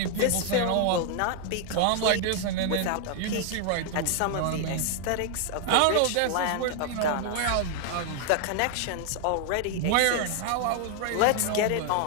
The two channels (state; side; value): different; both; correlation 0.00